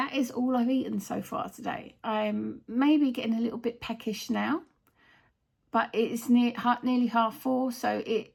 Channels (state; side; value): identical; both; correlation 1.00